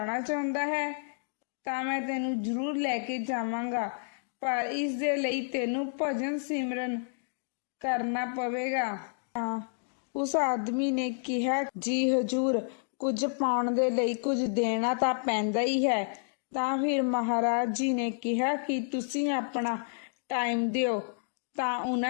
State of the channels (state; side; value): silent; right; digital silence